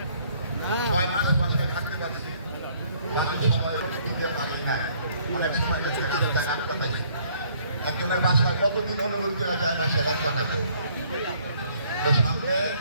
6 মাস বাসায় থাকতে পারছি। অনেক সময় দিতে পারি না, অনেক সময় একজনের বাসায় কতদিন অনুভূতি করা যায় বাসায় রাত কাটাবো। তো সামনে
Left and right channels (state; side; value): inverted; both; correlation -0.63